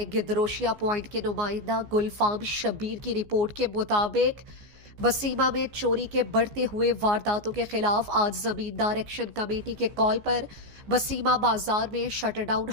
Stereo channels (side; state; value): left; late; 14 ms